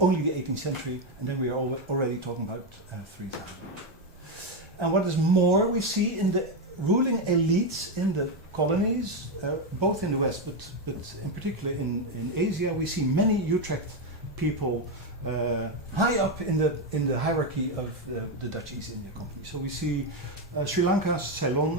the 18th century, and then we are already talking about 3,000. And what is more, we see in the ruling elites in the colonies, both in the West, but in particular in Asia, we see many Utrecht people high up in the hierarchy of the Dutch East India Company. So we see Sri Lanka, Ceylon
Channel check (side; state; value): both; normal; correlation 0.07